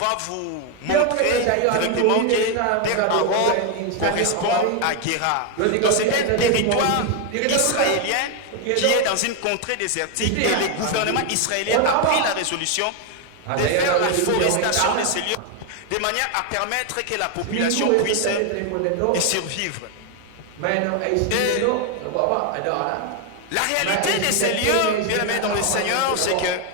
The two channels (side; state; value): both; different; correlation 0.01